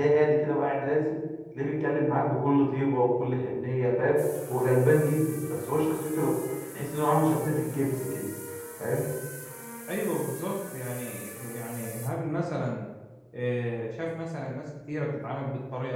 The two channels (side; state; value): both; identical; correlation 1.00